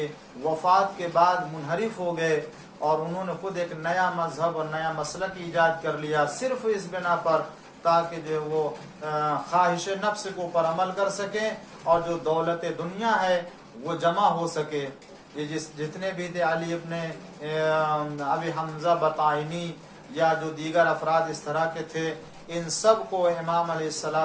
وفات کے بعد منحرف ہو گئے، اور انہوں نے خود ایک نیا مذہب اور نیا مسلک ایجاد کر لیا، صرف اس بنا پر تاکہ جو وہ خواہش نفس کے اوپر عمل کر سکیں اور جو دولت دنیا ہے وہ جمع ہو سکے۔ یہ جتنے بھی تھے علی ابن ابی حمزہ بطائنی یا جو دیگر افراد اس طرح کے تھے، ان سب کو امام علیہ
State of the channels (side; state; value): both; identical; correlation 1.00